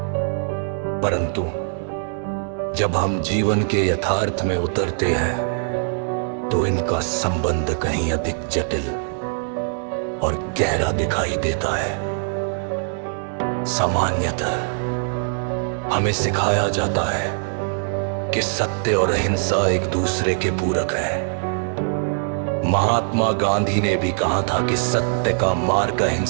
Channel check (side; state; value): left; silent; 62 dB below the other